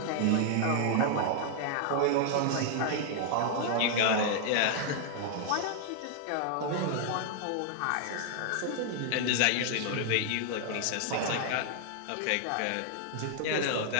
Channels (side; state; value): both; different; correlation 0.00